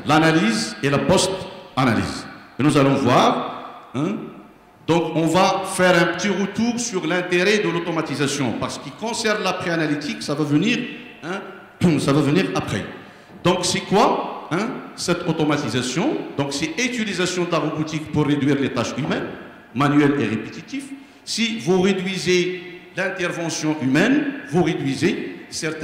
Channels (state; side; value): identical; both; correlation 1.00